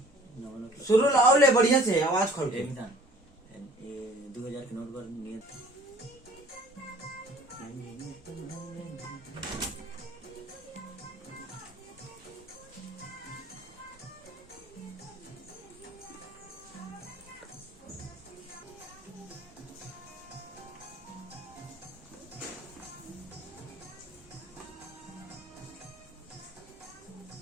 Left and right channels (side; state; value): both; normal; correlation 0.51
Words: शुरू लाओ ले बढ़िया से आवाज खोल के। 2000 के नोट पर नियत